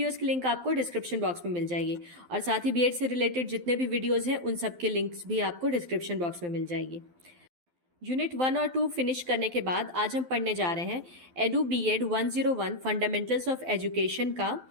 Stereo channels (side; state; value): left; late; 12 ms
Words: की लिंक आपको डिस्क्रिप्शन बॉक्स में मिल जाएगी और साथ ही बीएड से रिलेटेड जितने भी वीडियोस हैं उन सब के लिंक्स भी आपको डिस्क्रिप्शन बॉक्स में मिल जाएगी। यूनिट 1 और 2 फिनिश करने के बाद आज हम पढ़ने जा रहे हैं edu BEd 101 fundamentals of education का